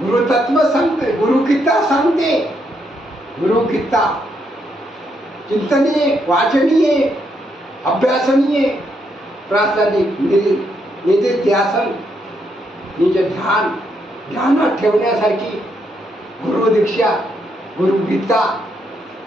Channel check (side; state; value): both; normal; correlation 0.77